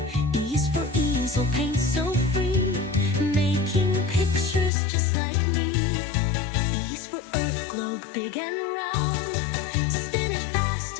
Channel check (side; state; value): right; drops out; at 4.7 s